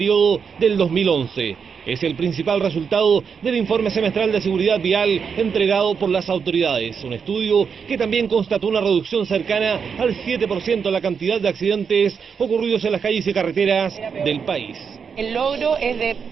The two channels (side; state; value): left; quieter; 6.3 dB